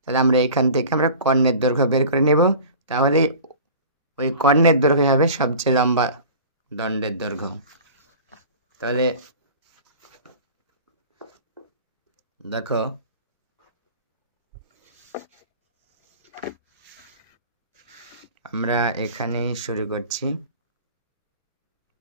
তাহলে আমরা এখান থেকে আমরা কর্ণের দৈর্ঘ্য বের করে নেব। তাহলে ওই কর্ণের দৈর্ঘ্য হবে সবচেয়ে লম্বা দণ্ডের দৈর্ঘ্য। তাহলে দেখো আমরা এখানেই শুরু করছি।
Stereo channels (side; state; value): both; inverted; correlation -0.40